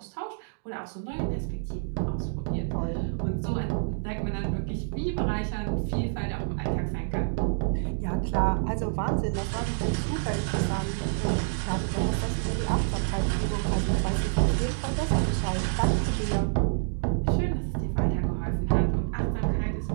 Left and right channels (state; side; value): silent; left; digital silence